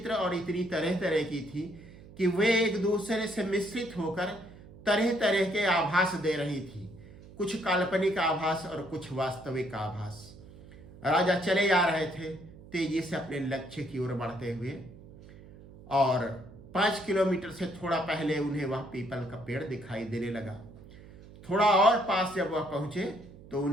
और इतनी तरह तरह की थी कि वे एक दूसरे से मिश्रित होकर तरह तरह के आभास दे रही थी, कुछ काल्पनिक आभास और कुछ वास्तविक आभास। राजा चले जा रहे थे तेजी से अपने लक्ष्य की ओर बढ़ते हुए, और 5 किलोमीटर से थोड़ा पहले उन्हें वह पीपल का पेड़ दिखाई देने लगा। थोड़ा और पास जब वह पहुंचे तो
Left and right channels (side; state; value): right; noise; hum, 19 dB below the sound